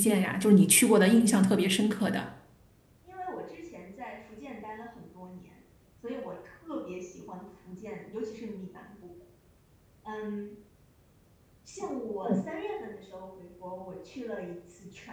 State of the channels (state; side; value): identical; both; correlation 1.00